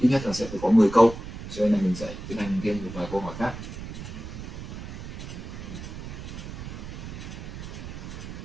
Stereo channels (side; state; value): right; noise; rumble, 9 dB below the sound